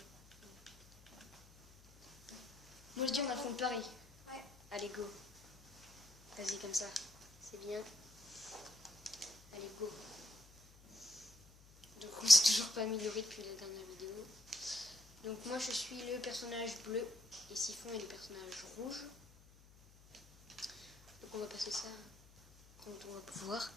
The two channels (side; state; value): left; noise; hum, 24 dB below the sound